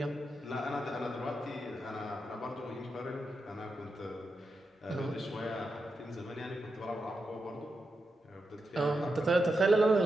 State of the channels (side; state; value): both; normal; correlation 0.87